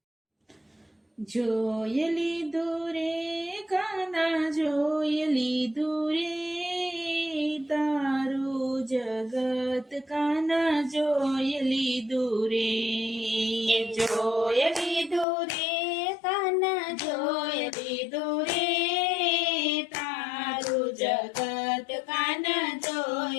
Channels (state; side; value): drops out; right; at 15.2 s